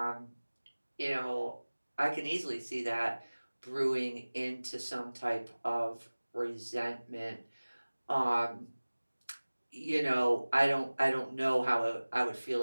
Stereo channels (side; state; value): both; inverted; correlation -1.00